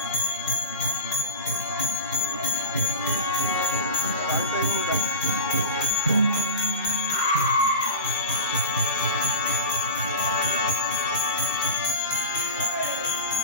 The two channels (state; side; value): inverted; both; correlation -0.32